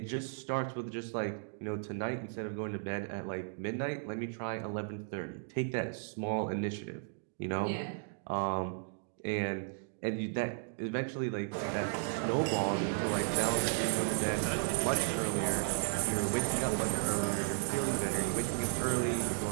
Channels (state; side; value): silent; left; digital silence